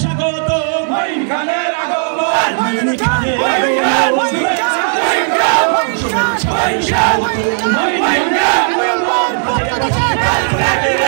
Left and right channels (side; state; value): left; silent; 69 dB below the other